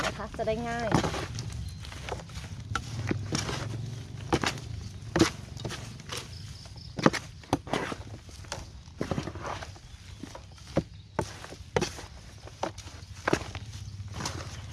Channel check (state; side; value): identical; both; correlation 1.00